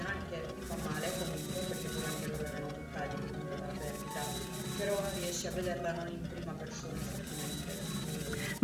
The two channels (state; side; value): identical; both; correlation 1.00